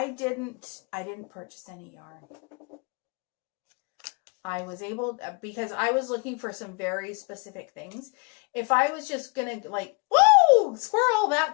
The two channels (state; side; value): quieter; right; 30.5 dB